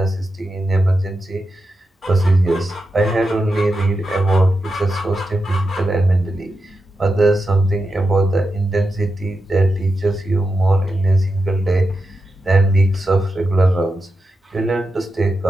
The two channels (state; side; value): normal; both; correlation 0.89